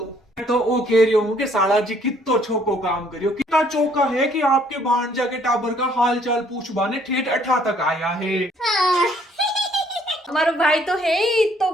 मैं तो वो कह रही हूँ कि साला जी कितो छोको काम करियो, कितना चौका है कि आपके भांजा के टाबर का हाल चाल पूछवाने ठेठ अठा तक आया है। हाँ। हमारो भाई तो है ही तो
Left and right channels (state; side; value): normal; both; correlation 0.63